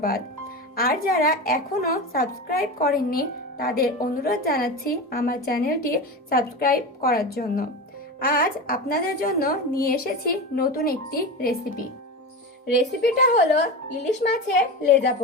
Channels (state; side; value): normal; both; correlation 0.24